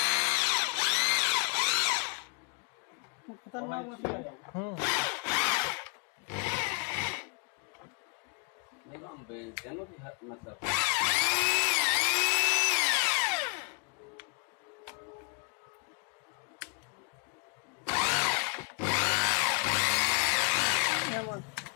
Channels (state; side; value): quieter; right; 38.7 dB